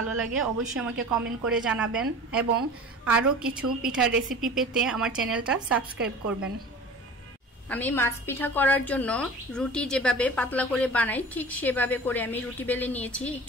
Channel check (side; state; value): both; normal; correlation 0.39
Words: লাগে অবশ্যই আমাকে কমেন্ট করে জানাবেন, এবং আরও কিছু পিঠার রেসিপি পেতে আমার চ্যানেলটা সাবস্ক্রাইব করবেন। আমি মাছ পিঠা করার জন্য রুটি যেভাবে পাতলা করে বানাই ঠিক সেভাবে করে আমি রুটি বেলে নিয়েছি,